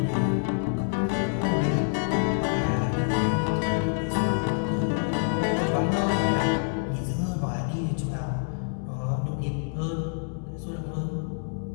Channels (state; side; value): silent; right; digital silence